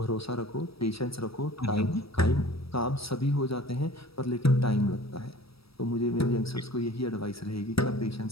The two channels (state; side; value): late; right; 0.76 ms